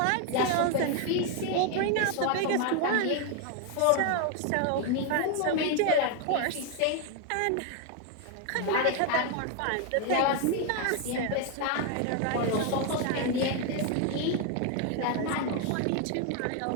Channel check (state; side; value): different; both; correlation 0.01